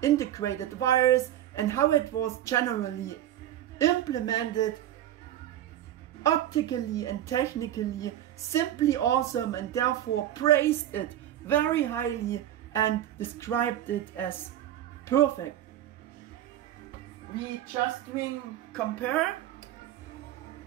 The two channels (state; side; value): quieter; left; 12.1 dB